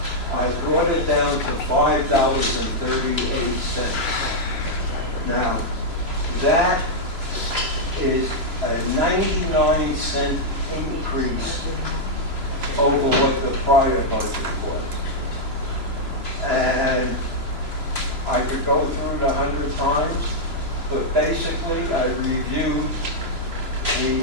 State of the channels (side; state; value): left; late; 3.0 ms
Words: I brought it down to $5.38. Now, that is a 99-cent increase over what the prior budget was. And I could go through it 100 times, but basically I reviewed the